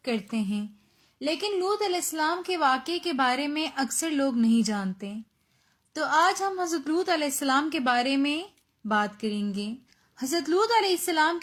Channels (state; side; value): identical; both; correlation 1.00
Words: کرتے ہیں، لیکن لوط علیہ السلام کے واقعے کے بارے میں اکثر لوگ نہیں جانتے۔ تو آج ہم حضرت لوط علیہ السلام کے بارے میں بات کریں گے۔ حضرت لوط علیہ السلام